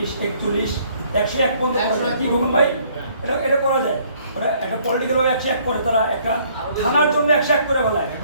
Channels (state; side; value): inverted; both; correlation -0.62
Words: 41, 101 পর্যন্ত কি বলুন ভাই, এটা করা যায়। ওরা একটা পলিটিক্যাল ভাবে 101 করে, তারা একটা থানার জন্য 101 করে ফেলায়,